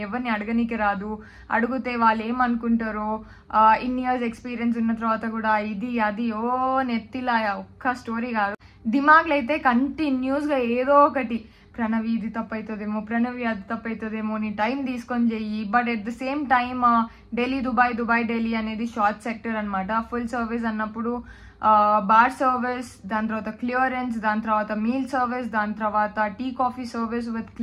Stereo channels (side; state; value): both; identical; correlation 1.00